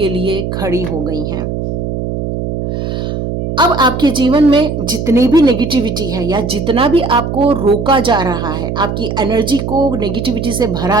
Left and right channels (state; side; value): noise; right; hum, 3 dB below the sound